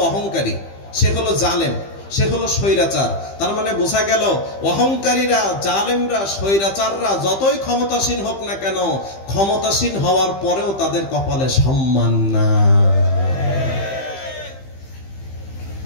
অহংকারী, সে হলো জালেম, সে হলো স্বৈরাচার। তার মানে বোঝা গেল অহংকারীরা, জালেমরা, স্বৈরাচাররা যতই ক্ষমতাসীন হোক না কেন, ক্ষমতাসীন হওয়ার পরেও তাদের কপালে সম্মান না।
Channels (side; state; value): right; late; 15 ms